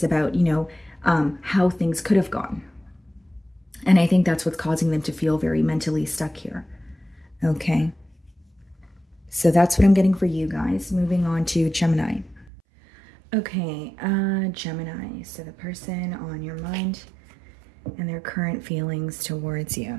about, you know, how things could have gone. And I think that's what's causing them to feel very mentally stuck here. Okay. So that's what I'm getting for you guys. Moving on to Gemini. Okay, Gemini. So the person on your mind and their current feelings towards you.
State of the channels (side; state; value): left; drops out; at 12.5 s